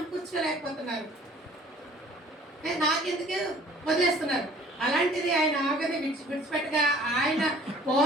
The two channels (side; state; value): both; normal; correlation 0.52